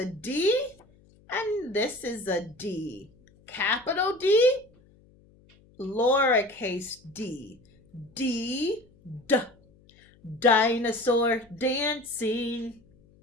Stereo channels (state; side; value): noise; left; hum, 29 dB below the sound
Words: D, and this is a D. Capital D, lowercase d. D, D. Dinosaur dancing.